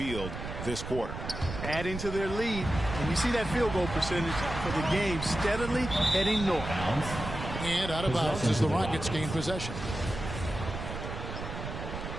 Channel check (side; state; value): right; noise; rumble, 7 dB below the sound